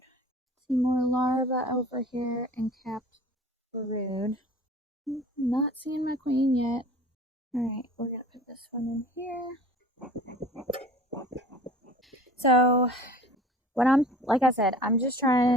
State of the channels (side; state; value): both; normal; correlation 0.44